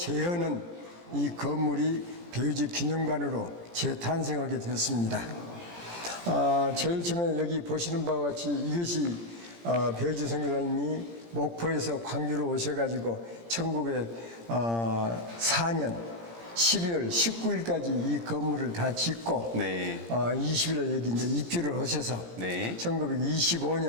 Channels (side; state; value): left; late; 17 ms